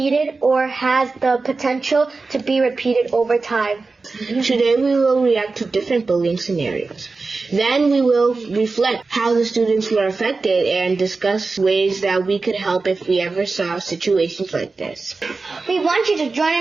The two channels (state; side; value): quieter; left; 3.9 dB